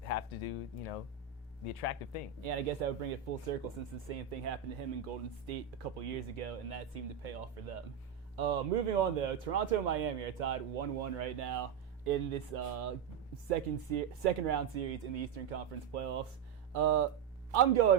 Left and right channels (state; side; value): quieter; left; 7.8 dB